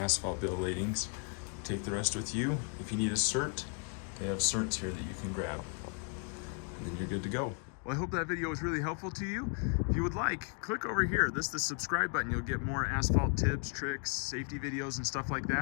bill of ladings. Take the rest with you. If you need a cert, they have certs here that you can grab. And then you're good to go. Well, I hope that video was really helpful to you. If you would like, click over here. This is the subscribe button. You'll get more asphalt tips, tricks, safety videos, and stuff like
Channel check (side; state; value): right; quieter; 39.7 dB